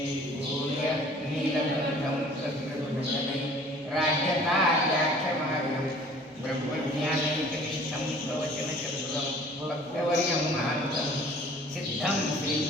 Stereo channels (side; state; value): both; normal; correlation 0.51